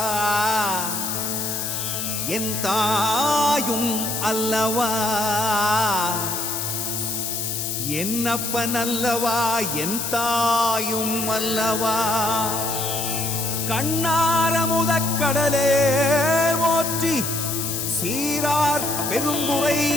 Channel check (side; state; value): left; noise; hiss, 3 dB below the sound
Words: என் தாயும் அல்லவா என்னப்பனல்லவா என் தாயும் அல்லவா கண்ணாரமுதக்கடலே போற்றி சீரார் பெருந்துரை